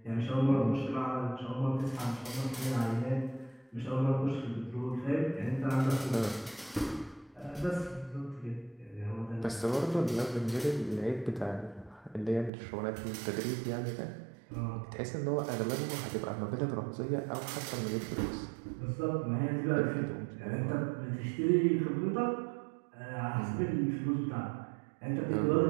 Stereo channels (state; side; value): drops out; left; at 12.5 s